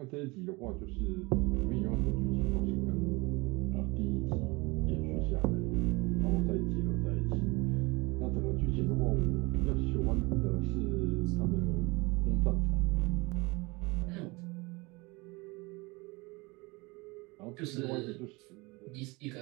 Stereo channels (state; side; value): quieter; left; 25.1 dB